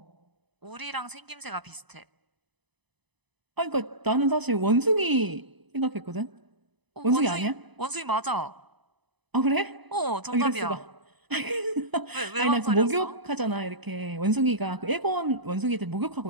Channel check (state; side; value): late; left; 1.0 ms